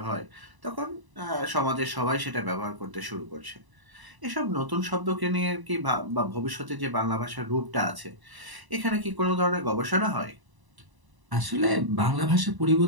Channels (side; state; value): left; late; 1.0 ms